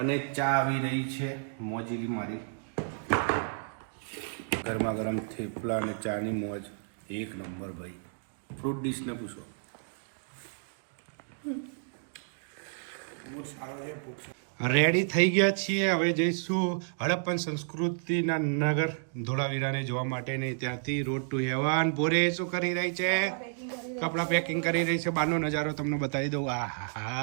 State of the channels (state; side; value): silent; left; digital silence